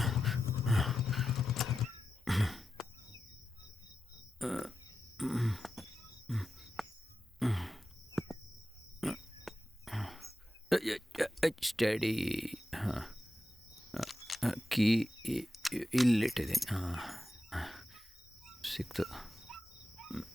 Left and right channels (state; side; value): normal; both; correlation 0.91